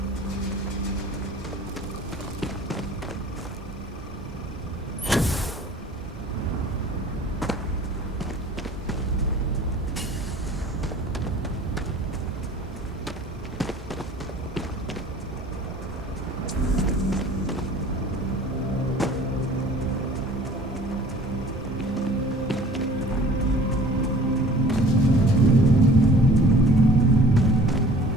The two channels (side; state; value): both; normal; correlation 0.48